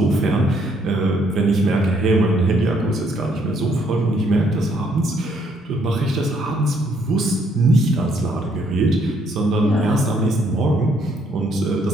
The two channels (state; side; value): normal; both; correlation 0.69